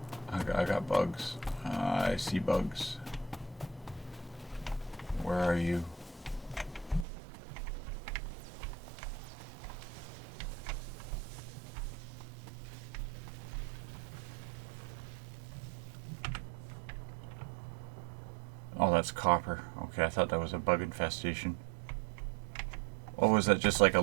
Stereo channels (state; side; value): drops out; left; at 7.1 s